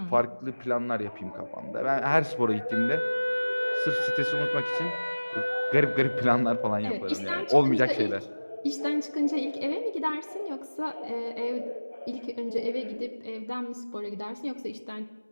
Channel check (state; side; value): inverted; both; correlation -1.00